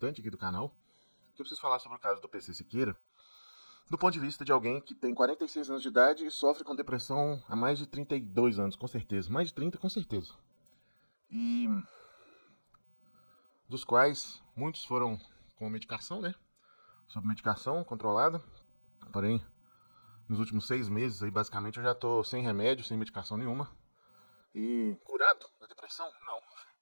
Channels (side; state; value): both; inverted; correlation -1.00